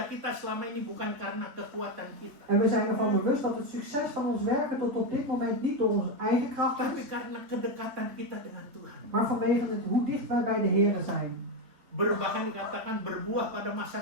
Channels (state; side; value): late; left; 3.9 ms